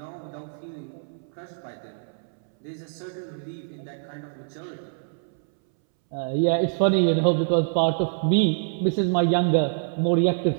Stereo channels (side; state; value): left; silent; 61 dB below the other